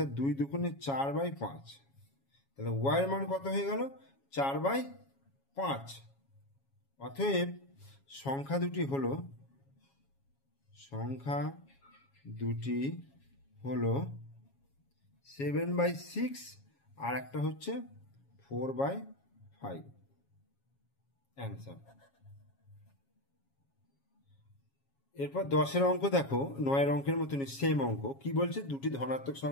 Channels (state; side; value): late; right; 7.3 ms